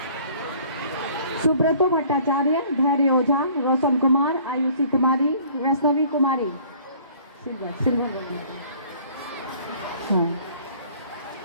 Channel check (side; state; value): both; inverted; correlation -0.54